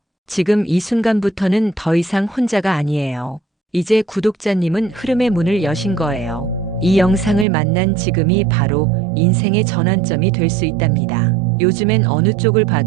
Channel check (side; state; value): left; drops out; at 7.5 s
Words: 지금 이 순간부터는 더 이상 혼자가 아니에요. 이제 구독자님은 흐름의 문을 여신 거예요. 이 영상을 만난 지금이 바로 인생의 전환점이 될 수 있답니다. 요즘엔 어느 쪽을